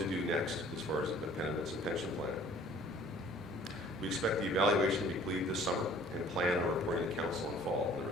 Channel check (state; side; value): normal; both; correlation 0.53